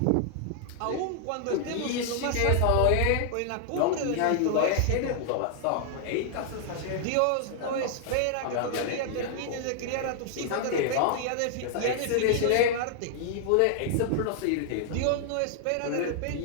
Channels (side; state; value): both; different; correlation -0.01